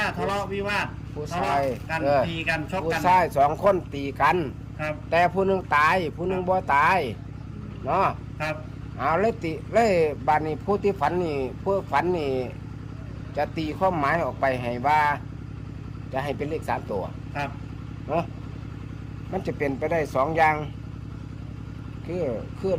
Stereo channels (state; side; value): identical; both; correlation 1.00